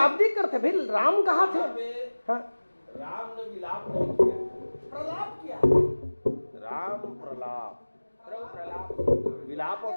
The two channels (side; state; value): both; inverted; correlation -1.00